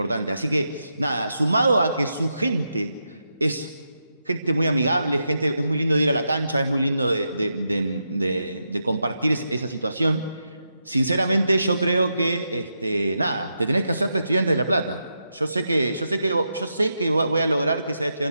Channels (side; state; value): both; inverted; correlation -0.85